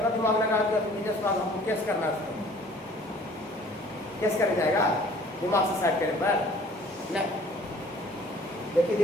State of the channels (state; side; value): normal; both; correlation 0.53